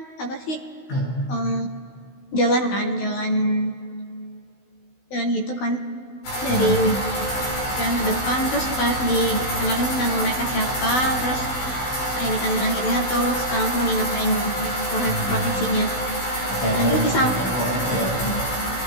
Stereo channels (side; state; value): right; late; 16 ms